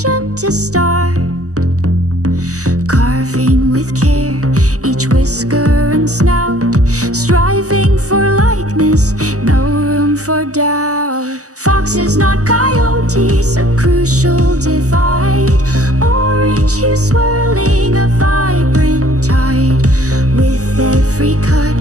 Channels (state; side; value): late; left; 0.66 ms